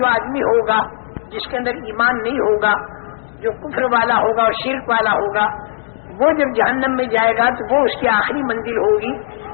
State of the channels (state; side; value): silent; right; 68 dB below the other